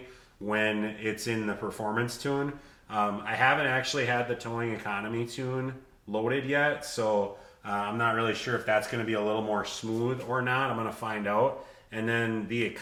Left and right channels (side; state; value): both; identical; correlation 1.00